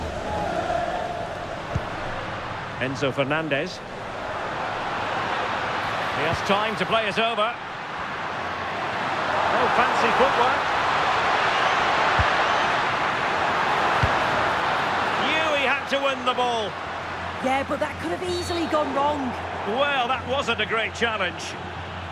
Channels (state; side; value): identical; both; correlation 1.00